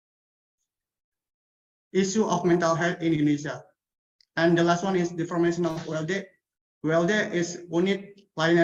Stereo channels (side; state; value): both; identical; correlation 1.00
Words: issue of mental health in Indonesia. And the last one is the formation of ULD, ULD is Unit